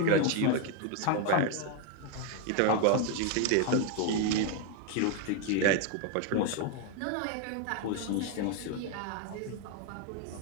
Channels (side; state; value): both; different; correlation 0.01